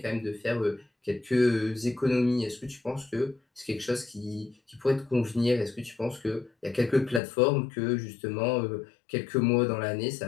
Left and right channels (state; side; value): drops out; right; at 7.2 s